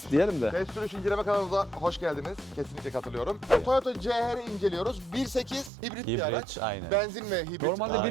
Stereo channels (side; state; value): left; drops out; at 5.7 s